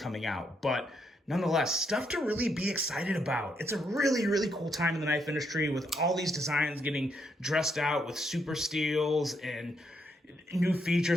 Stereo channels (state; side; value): normal; both; correlation 0.76